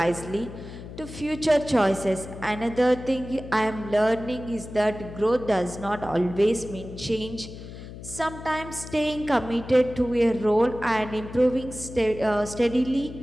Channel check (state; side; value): noise; left; hum, 13 dB below the sound